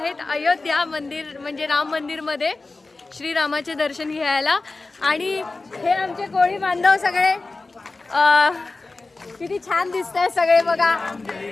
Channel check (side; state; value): right; quieter; 3.5 dB